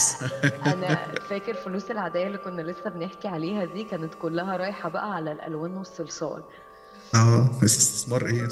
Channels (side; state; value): both; identical; correlation 1.00